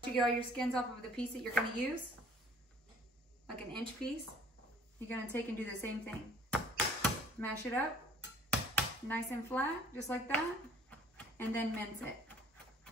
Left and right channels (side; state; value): both; normal; correlation 0.54